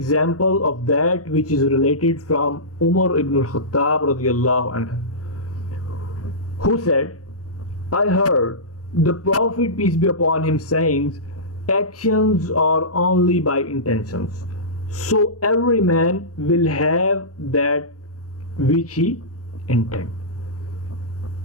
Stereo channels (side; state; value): both; normal; correlation -0.19